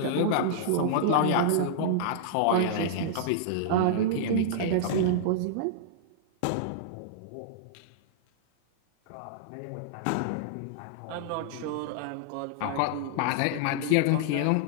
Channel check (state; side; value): different; both; correlation -0.02